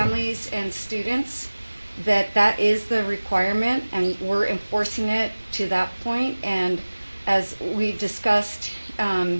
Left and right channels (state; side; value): inverted; both; correlation -1.00